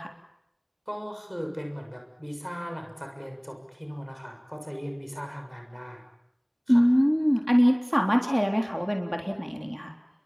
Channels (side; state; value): both; identical; correlation 1.00